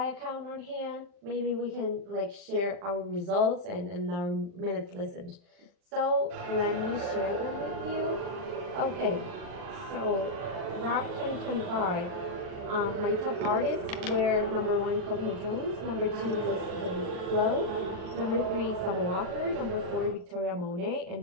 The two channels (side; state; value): left; late; 40 ms